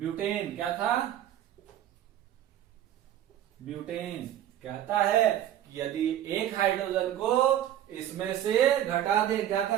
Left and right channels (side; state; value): left; quieter; 11.5 dB